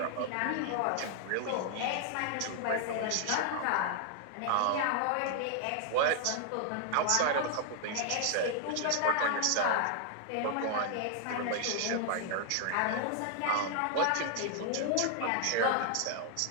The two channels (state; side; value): different; both; correlation 0.00